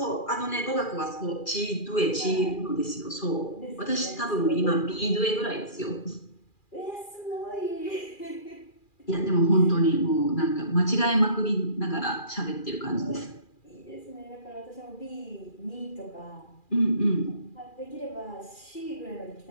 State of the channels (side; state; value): right; late; 2.4 ms